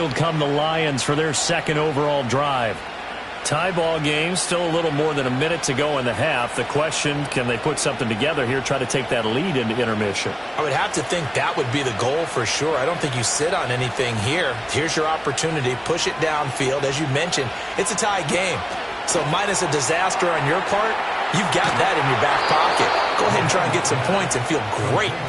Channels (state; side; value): identical; both; correlation 1.00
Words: come the Lions for their 2nd overall drive. Tie ball game, still a little more than a minute to go in the half. The question, can they put something together here, try to take that lead into intermission? I would have to think that would be the goal for sure. I don't think you sit on anything here. Here's your opportunity. Push it downfield. As you mentioned, it's a tie game. So minus a disaster on your part, you've got that in your back pocket. Go ahead and try and get some points and feel great